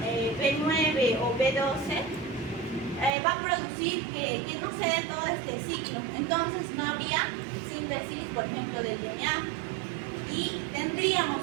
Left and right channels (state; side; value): drops out; left; at 3.2 s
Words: B9 o B12, va a producir que no se dé todo este ciclo. Entonces no habría síntesis, por ejemplo, del DNA, y tendríamos